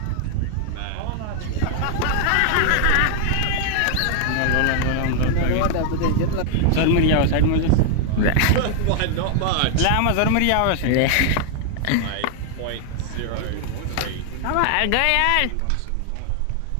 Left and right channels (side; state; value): both; different; correlation 0.00